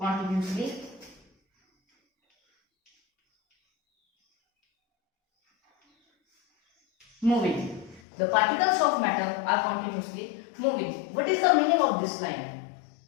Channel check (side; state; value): right; drops out; at 8.0 s